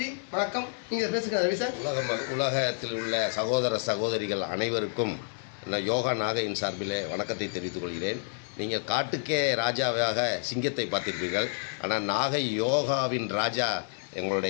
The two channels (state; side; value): silent; right; digital silence